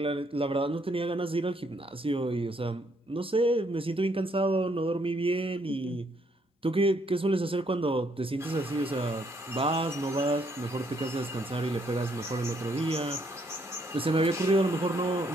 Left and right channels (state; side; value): normal; both; correlation 0.70